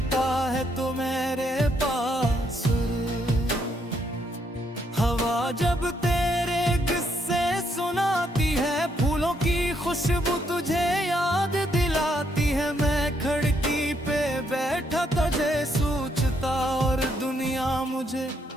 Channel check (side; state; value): both; normal; correlation 0.74